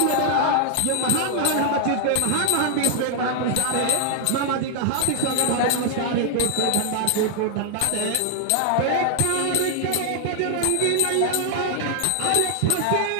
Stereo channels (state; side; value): different; both; correlation -0.01